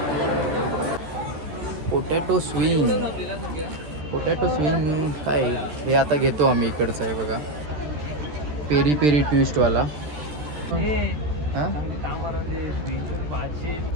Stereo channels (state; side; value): late; left; 13 ms